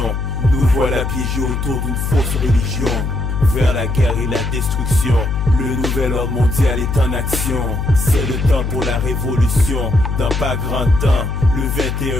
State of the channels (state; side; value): noise; left; hum, 2 dB below the sound